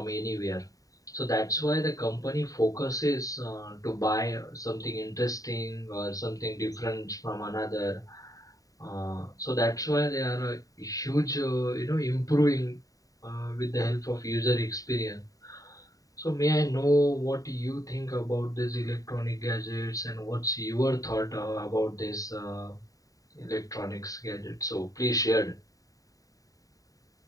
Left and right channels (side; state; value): right; late; 0.17 ms